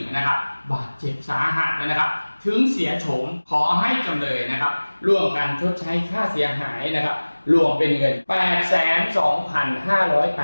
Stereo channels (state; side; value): inverted; both; correlation -1.00